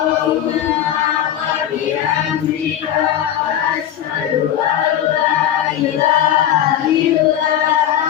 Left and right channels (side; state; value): right; quieter; 10.5 dB